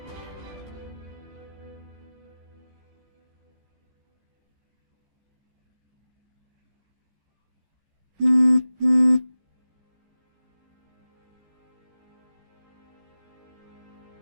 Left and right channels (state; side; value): late; left; 15 ms